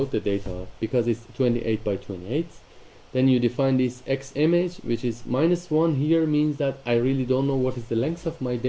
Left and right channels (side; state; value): both; identical; correlation 1.00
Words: the data, because it's 28 by 28. Then you define this x image, which is -1 here, means that I really don't know what is the length of my